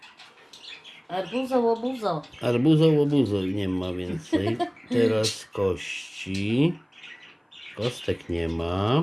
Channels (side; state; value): both; identical; correlation 1.00